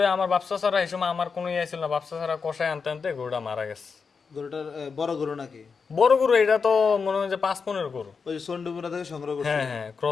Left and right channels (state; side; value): quieter; right; 5.4 dB